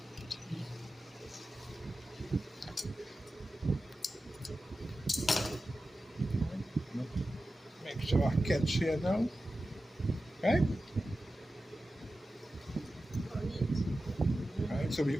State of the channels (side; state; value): both; normal; correlation 0.93